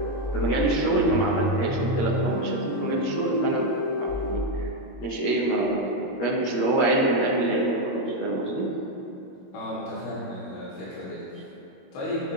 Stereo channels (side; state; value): right; late; 22 ms